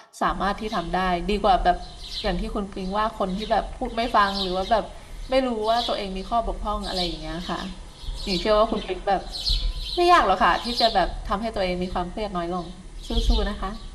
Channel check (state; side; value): identical; both; correlation 1.00